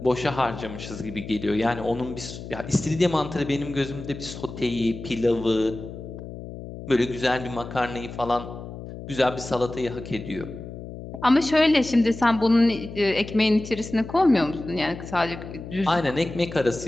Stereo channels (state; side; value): noise; left; hum, 11 dB below the sound